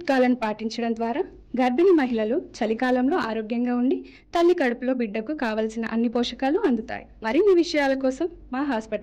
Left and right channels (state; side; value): identical; both; correlation 1.00